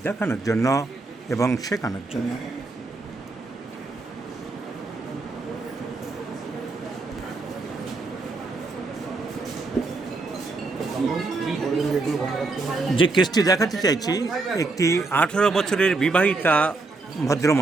দেখানোর জন্য এবং শেখানোর জন্য। যে কেসটি দেখাতে চাইছি, একটি 18 বছরের বিবাহিতা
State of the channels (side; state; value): left; quieter; 3.5 dB